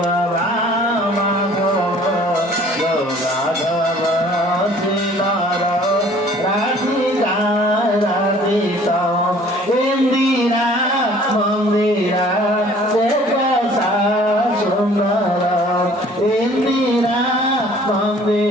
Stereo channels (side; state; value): both; normal; correlation 0.53